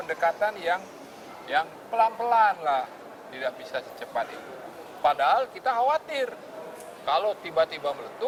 yang pelan-pelan lah. Tidak bisa secepat itu. Padahal kita khawatir kalau tiba-tiba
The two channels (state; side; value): identical; both; correlation 1.00